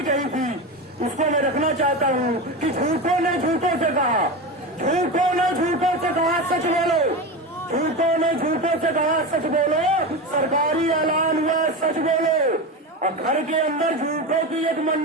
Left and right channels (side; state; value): both; normal; correlation 0.21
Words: कही थी, उसको मैं रखना चाहता हूँ कि झूठों ने झूठों से कहा, झूठों ने झूठों से कहा सच बोलो, झूठों ने झूठों से कहा सच बोलो, सरकारी ऐलान हुआ सच बोलो। और घर के अंदर झूठों की एक